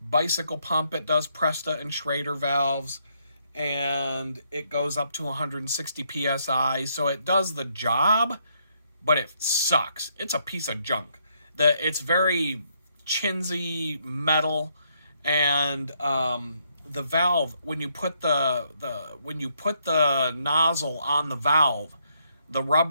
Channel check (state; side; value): inverted; both; correlation -0.73